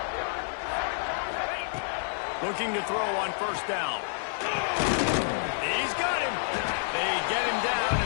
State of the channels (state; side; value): silent; right; digital silence